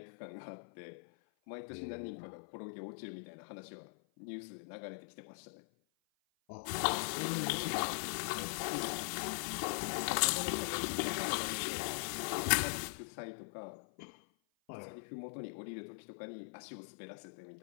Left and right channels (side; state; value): right; silent; 50 dB below the other